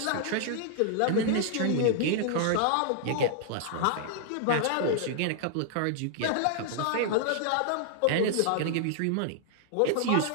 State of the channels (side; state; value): both; different; correlation -0.01